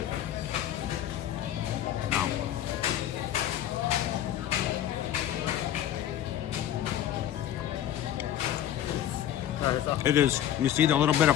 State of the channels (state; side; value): quieter; right; 11.4 dB